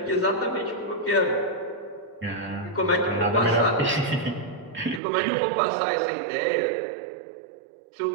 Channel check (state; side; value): drops out; left; at 5.0 s